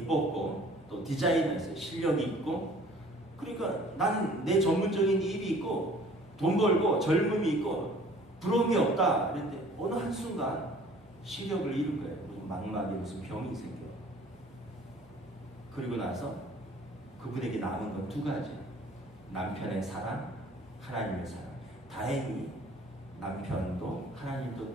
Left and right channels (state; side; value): normal; both; correlation 0.52